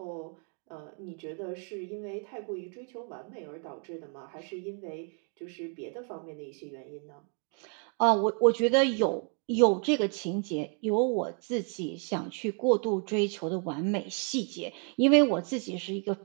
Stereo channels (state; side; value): quieter; left; 39.7 dB